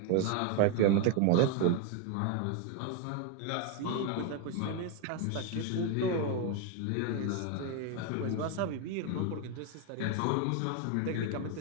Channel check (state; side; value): different; both; correlation 0.01